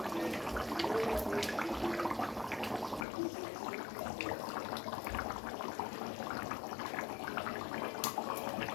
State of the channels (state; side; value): drops out; right; at 3.1 s